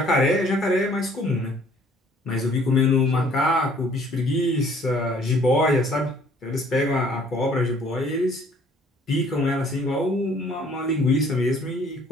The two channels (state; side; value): normal; both; correlation 0.58